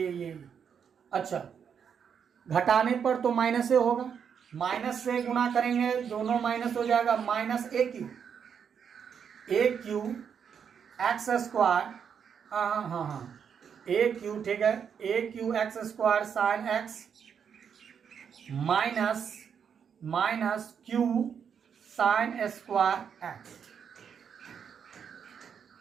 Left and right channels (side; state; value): left; quieter; 7.4 dB